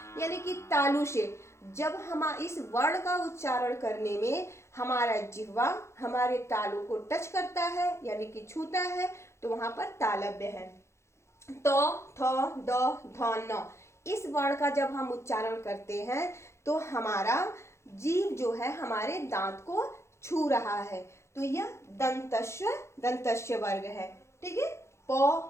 यानी कि तालु से। जब हम इस वर्ण का उच्चारण करने में हमारा जिह्वा हमारे तालु को टच करता है यानी कि छूता है, तो वहां पर तालव्य है। तो थ द ध न, इस वर्ण का जब हम उच्चारण करते हैं तो हमारा जीभ जो है हमारे दांत को छू रहा है, तो यह दंतस्य वर्ग है, ठीक है। प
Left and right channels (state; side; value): late; right; 0.13 ms